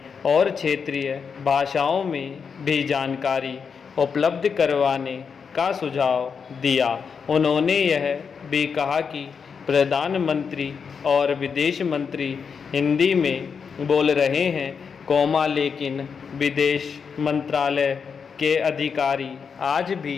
और क्षेत्रीय भाषाओं में भी जानकारी उपलब्ध करवाने का सुझाव दिया। उन्होंने यह भी कहा कि प्रधानमंत्री और विदेश मंत्री हिंदी में बोल रहे हैं, लेकिन विदेश मंत्रालय के अधिकारी आज भी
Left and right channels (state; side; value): quieter; right; 6.1 dB